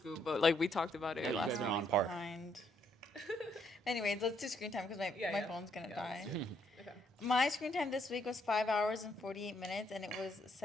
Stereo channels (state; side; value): normal; both; correlation 0.72